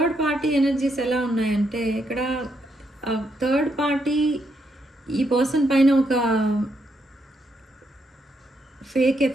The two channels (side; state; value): both; normal; correlation 0.78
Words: party energies ఎలా ఉన్నాయంటే ఇక్కడ థర్డ్ పార్టీ ఈ పర్సన్ పైన ఒక ఫేక్